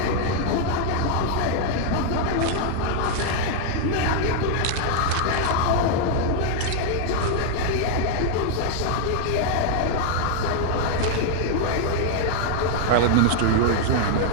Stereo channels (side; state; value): both; different; correlation 0.00